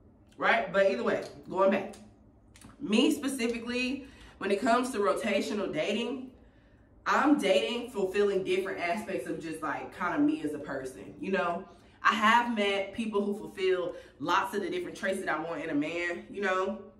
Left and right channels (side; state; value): both; identical; correlation 1.00